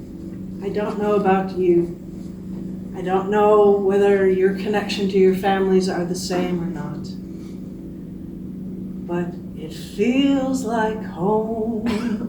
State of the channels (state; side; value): identical; both; correlation 1.00